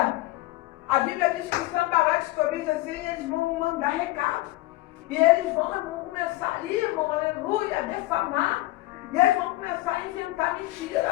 A Bíblia diz que Sambalate, Tobias, assim, eles vão mandar recado. E eles vão começar ali, irmão, aleluia, a defamar. E eles vão começar a inventar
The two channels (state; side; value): quieter; right; 18.3 dB